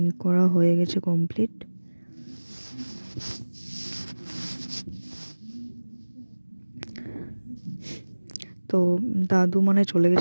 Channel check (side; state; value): both; inverted; correlation -1.00